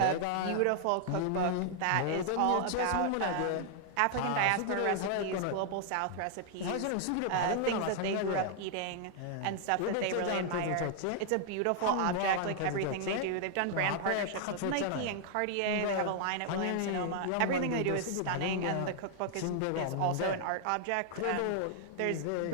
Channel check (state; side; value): different; both; correlation 0.00